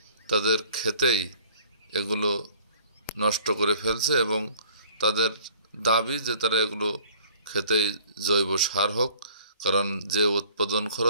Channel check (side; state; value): both; inverted; correlation -0.54